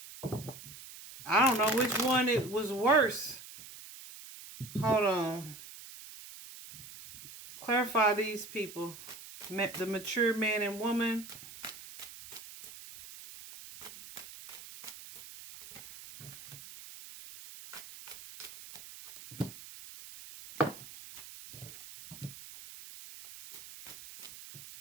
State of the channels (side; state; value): right; noise; hiss, 15 dB below the sound